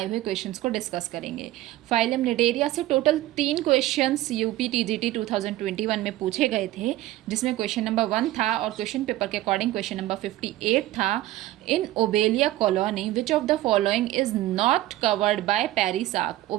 हुए क्वेश्चंस को डिस्कस करेंगे। फाइलम निडेरिया से टोटल 3 क्वेश्चंस यूपी टीजीटी 2021 में पूछे गए थे, जिसमें क्वेश्चन नंबर 1 था और क्वेश्चन पेपर के अकॉर्डिंग क्वेश्चन नंबर 58 था। In Obelia colony which of the following is not covered by perisarc.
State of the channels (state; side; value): quieter; left; 15.7 dB